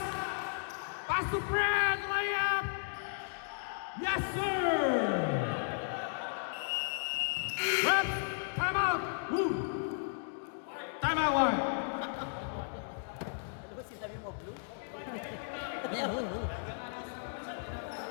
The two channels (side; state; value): right; silent; digital silence